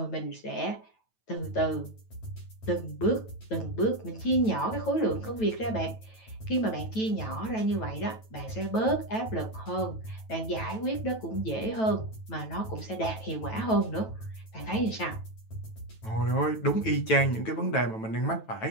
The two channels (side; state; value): right; late; 9.1 ms